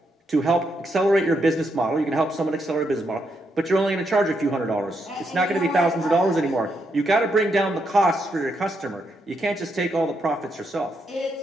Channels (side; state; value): both; normal; correlation 0.79